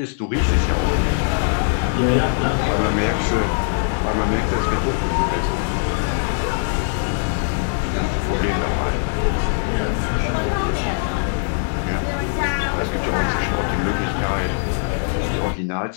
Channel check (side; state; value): right; silent; 65 dB below the other